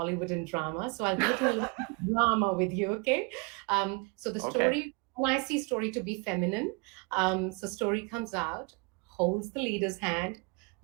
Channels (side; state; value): left; quieter; 30.3 dB